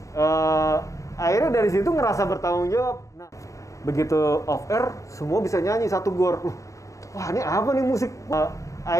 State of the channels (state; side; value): late; right; 0.15 ms